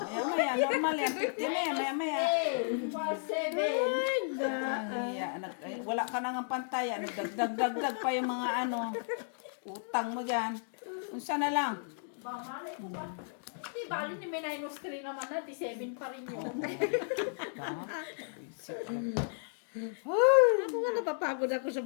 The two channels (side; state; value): right; silent; digital silence